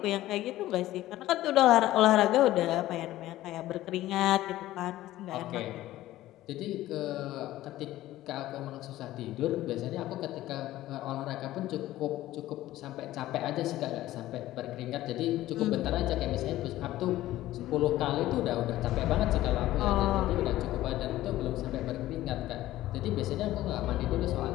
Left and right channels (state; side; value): quieter; right; 15.2 dB